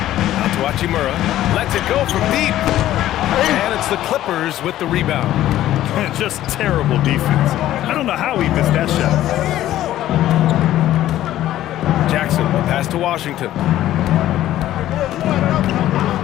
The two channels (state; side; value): quieter; right; 13.5 dB